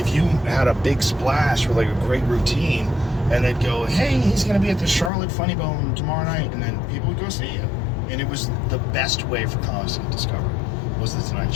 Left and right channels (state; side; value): drops out; right; at 5.1 s